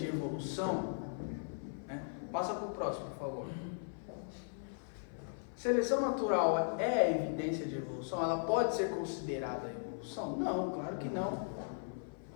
evolução? Né? Passa para o próximo, por favor. Seleção natural é evidência de evolução? Ela pode ser considerada evolução? Não, claro que não.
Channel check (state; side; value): silent; right; 53 dB below the other